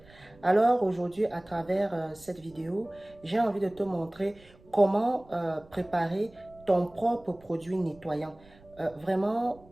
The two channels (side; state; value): right; noise; rumble, 26 dB below the sound